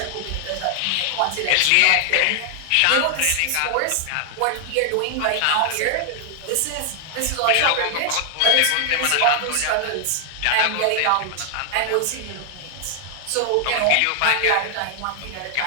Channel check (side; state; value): both; different; correlation 0.00